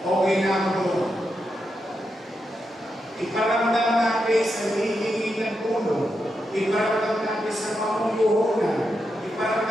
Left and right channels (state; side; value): normal; both; correlation 0.85